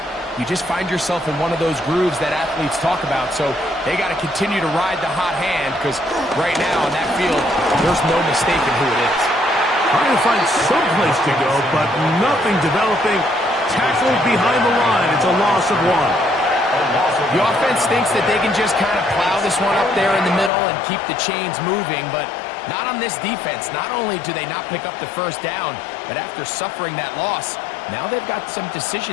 you just find yourself in one of those grooves that athletes talk about. So they got to continue to ride the hot hand, because right now on that field, there's no mistaking who it is. Trying to find some place to go, but nothing developing. Tackled behind the line. It's a loss of 1. The offense thinks that they can just kind of plow this one up there in the middle and keep the chains moving, but not on this defense. Not only do they not pick up the first down, but after suffering that loss, now they've got some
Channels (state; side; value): drops out; right; at 20.5 s